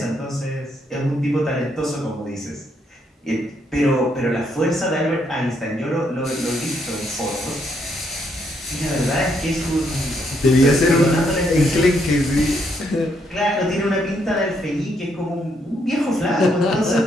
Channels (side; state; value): both; normal; correlation 0.74